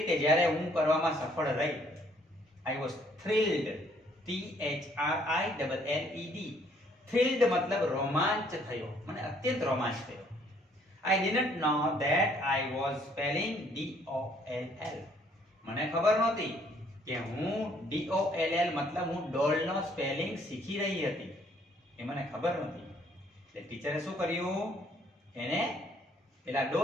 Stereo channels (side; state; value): both; normal; correlation 0.64